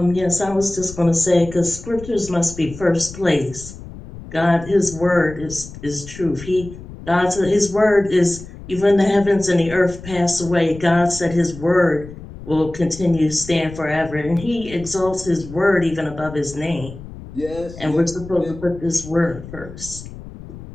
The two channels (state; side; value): noise; left; rumble, 15 dB below the sound